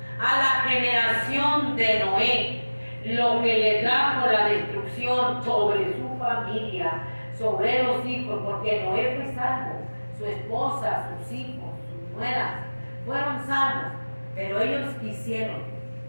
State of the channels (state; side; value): inverted; both; correlation -1.00